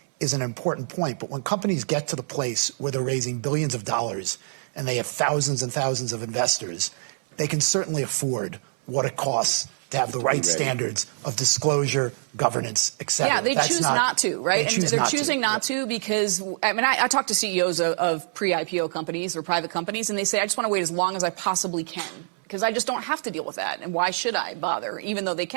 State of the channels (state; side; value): silent; left; 62 dB below the other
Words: is an important point. But when companies get to the place where they're raising billions of dollars and they have thousands and thousands of investors, they can certainly afford what it costs to have the right standards of disclosure, governance, et cetera. Yeah, they choose not to, right? And they're choosing not to because, I mean, I talk to CEOs of pre-IPO companies or private companies, and they say, I just want to wait as long as I possibly can because I just don't have to deal with that. And why should I bother, even though they